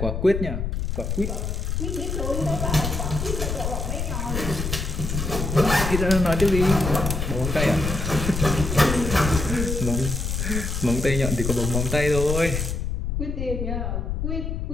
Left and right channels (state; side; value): noise; left; rumble, 2 dB below the sound